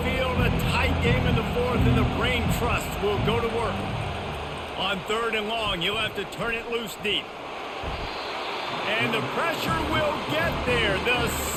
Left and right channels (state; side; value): identical; both; correlation 1.00